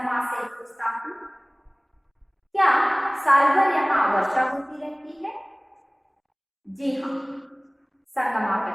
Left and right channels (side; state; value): both; identical; correlation 1.00